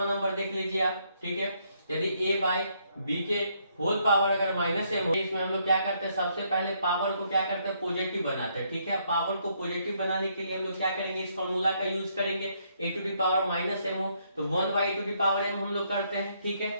नंबर देख लीजिए आप। ठीक है, यदि a बाई b के होल पावर अगर माइनस m हो, इसमें हम लोग क्या करते हैं, सबसे पहले पावर को क्या करते हैं पॉजिटिव बनाते हैं। ठीक है, पावर को पॉजिटिव बनाने के लिए हम लोग क्या करेंगे, इस फॉर्मूला का यूज करेंगे। a to the power minus m हो तो 1 by a to the power m हम लोग करते हैं। ठीक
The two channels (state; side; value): inverted; both; correlation -0.72